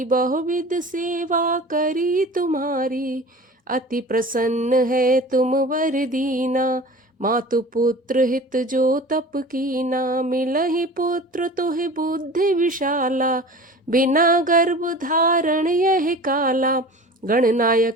बहुविध सेवा करी तुम्हारी। अति प्रसन्न है तुम वर दीना, मातु पुत्र हित जो तप कीना। मिलहि पुत्र तुहि बुद्धि विशाला, बिना गर्भ धारण यह काला।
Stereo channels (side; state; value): both; normal; correlation 0.38